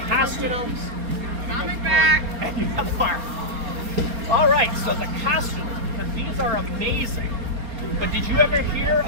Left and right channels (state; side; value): late; left; 4.4 ms